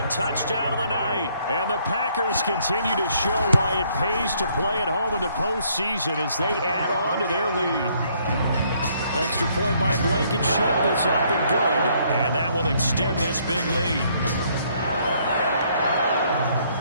touchdown of the night. And the Packers continue to show why it pays to play at home in the postseason as they add on to their lead. Extra point by Blankenship is up and good. And that will extend this big lead.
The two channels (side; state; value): both; inverted; correlation -0.67